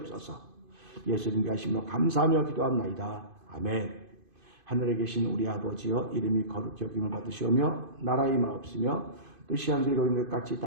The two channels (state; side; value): late; left; 2.5 ms